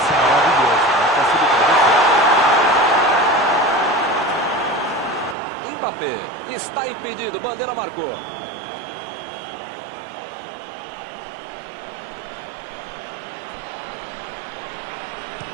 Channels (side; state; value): left; drops out; at 5.4 s